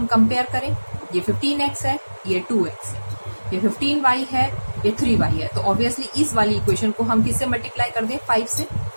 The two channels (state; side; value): inverted; both; correlation -1.00